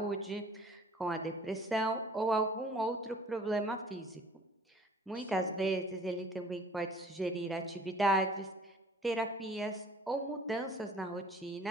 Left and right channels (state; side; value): normal; both; correlation 0.52